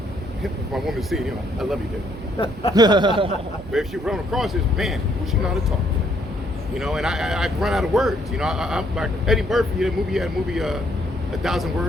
if my woman see, you know, I love you, dude. But if she run across this, man, she know how to talk. You know, and I run out of words. You know, I'm like Eddie Murphy. He had a movie, 1,000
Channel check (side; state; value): both; normal; correlation 0.69